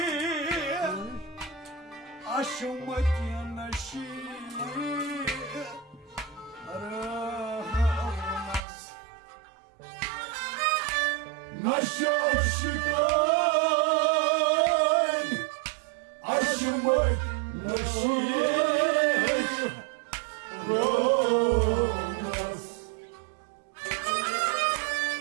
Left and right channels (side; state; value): left; drops out; at 8.6 s